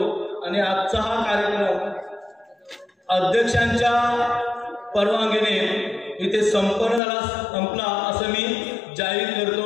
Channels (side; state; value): right; drops out; at 7.0 s